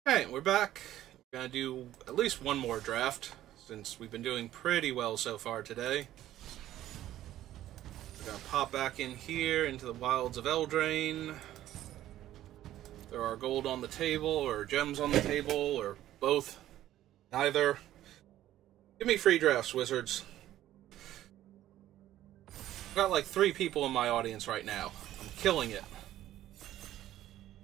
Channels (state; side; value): quieter; left; 13.3 dB